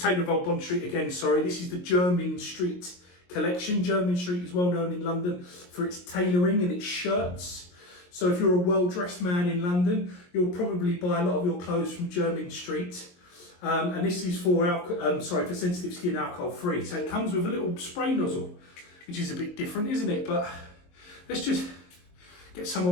of Old Bond Street again, sorry. This is the Jermyn Street collection. Jermyn Street is well known in London for its tailoring and its shirts. So if you're a well-dressed man in London, you'll probably buy a lot of your clothes from Jermyn Street. And this is for sensitive skin, alcohol free. So it comes with a little spray nozzle, which is a bit different, isn't it? But let's just get some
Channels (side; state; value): right; late; 22 ms